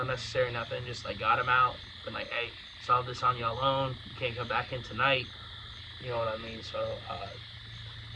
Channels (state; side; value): identical; both; correlation 1.00